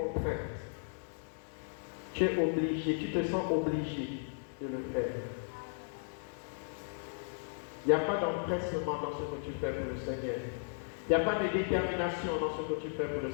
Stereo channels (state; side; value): silent; right; digital silence